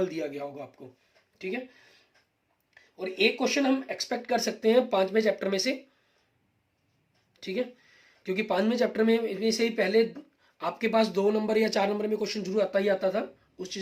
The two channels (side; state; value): both; identical; correlation 1.00